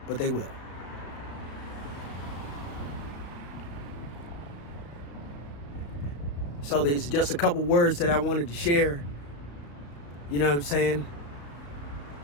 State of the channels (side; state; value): right; late; 35 ms